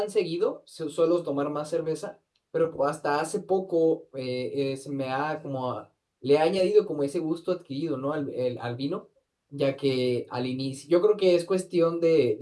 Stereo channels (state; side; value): identical; both; correlation 1.00